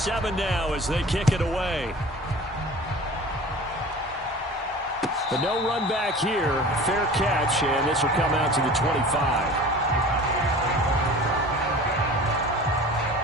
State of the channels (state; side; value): normal; both; correlation 0.40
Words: now as they kick it away. The no run back here, fair catch, and this will come out to the 25.